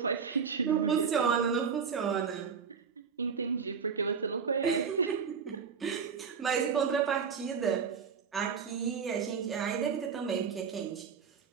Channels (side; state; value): left; quieter; 6.3 dB